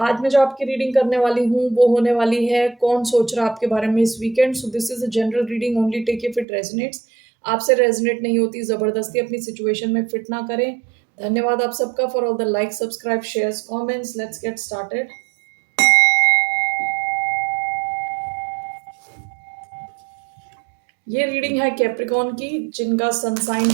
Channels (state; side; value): drops out; left; at 6.5 s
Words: मैं जो आपकी रीडिंग करने वाली हूँ वो होने वाली है कौन सोच रहा है आपके बारे में इस weekend. So this is a general reading, only take if it resonates. आपसे रेजोनेट नहीं होती जबरदस्ती अपनी सिचुएशन में फिट ना करें। धन्यवाद आप सबका for all the like, subscribe, shares, comments. Let's get started. ये रीडिंग है कैप्रिकॉन की, जिनका सन साइन